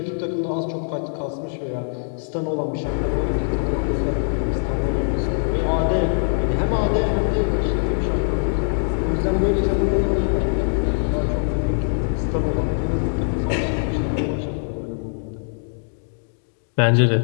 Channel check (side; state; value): right; silent; digital silence